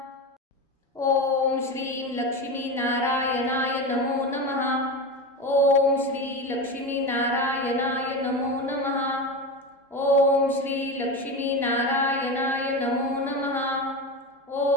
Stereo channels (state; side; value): normal; both; correlation 0.22